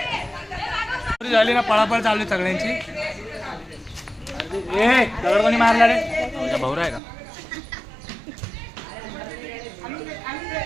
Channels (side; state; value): left; drops out; at 7.0 s